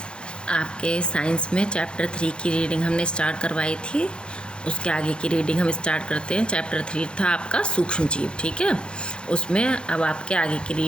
आपके साइंस में चैप्टर 3 की रीडिंग हमने स्टार्ट करवाई थी। उसके आगे की रीडिंग हम स्टार्ट करते हैं। चैप्टर 3 था आपका सूक्ष्म जीव, ठीक है। उसमें अब आपके आगे की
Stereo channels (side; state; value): right; late; 0.053 ms